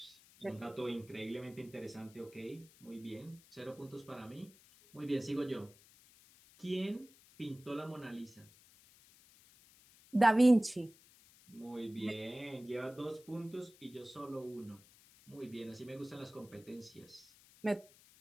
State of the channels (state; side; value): noise; left; hiss, 25 dB below the sound